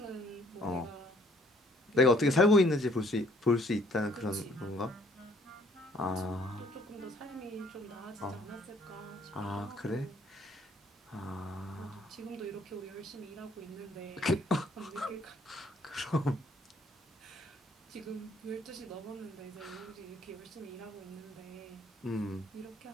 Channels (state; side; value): normal; both; correlation 0.62